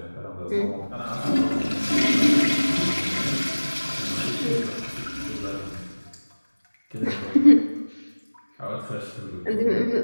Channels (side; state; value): both; inverted; correlation -1.00